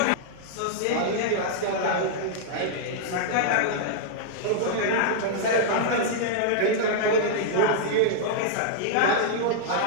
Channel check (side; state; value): both; different; correlation -0.02